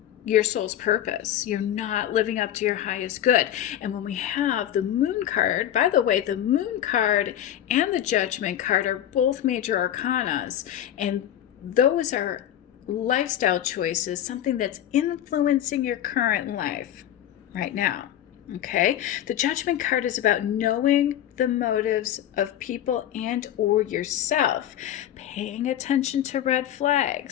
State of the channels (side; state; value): right; quieter; 11.3 dB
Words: your soul's purpose. You're not living up to your highest good. And when we have the Moon card, by the way, the Moon card and the Judgment card are both major arcanas, and those are lifestyle choices, something that's influencing your current life right now. Okay, the Judgment card is about knowing the motives of people and or yourself, paying attention to red